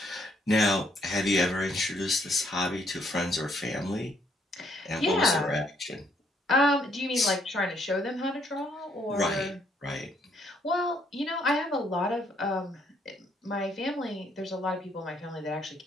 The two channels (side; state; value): both; normal; correlation 0.70